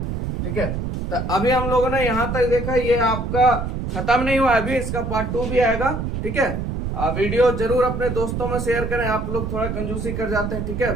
ठीक है, तो अभी हम लोगों ने यहाँ तक देखा, ये आपका खत्म नहीं हुआ, अभी इसका पार्ट 2 भी आएगा। ठीक है, वीडियो जरूर अपने दोस्तों में शेयर करें, आप लोग थोड़ा कंजूसी कर जाते हैं। ठीक है,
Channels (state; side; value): noise; right; rumble, 3 dB below the sound